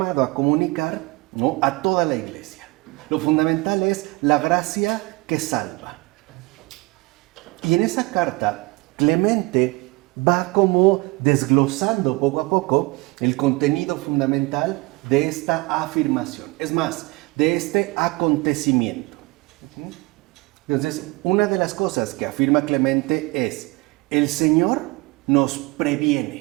a comunicar, ¿no?, a toda la iglesia. Lo fundamental es la gracia que salva. Y en esa carta Clemente va como desglosando poco a poco el contenido fundamental de esta afirmación. Es más, de este acontecimiento. Entonces, una de las cosas que afirma Clemente es: el Señor nos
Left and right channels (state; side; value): quieter; left; 24.0 dB